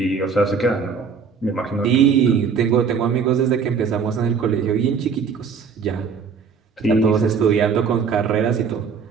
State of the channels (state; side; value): quieter; left; 5.9 dB